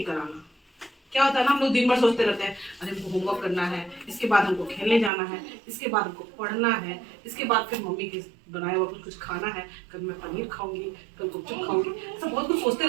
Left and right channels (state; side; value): drops out; left; at 5.1 s